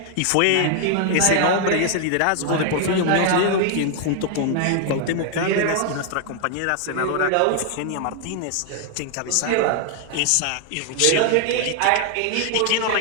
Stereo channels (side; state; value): both; different; correlation 0.00